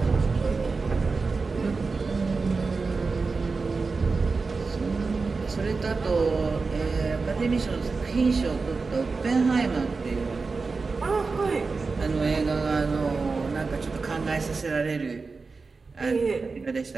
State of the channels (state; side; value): quieter; left; 4.3 dB